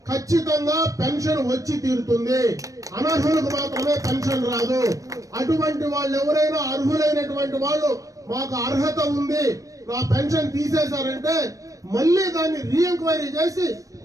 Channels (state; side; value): late; left; 0.16 ms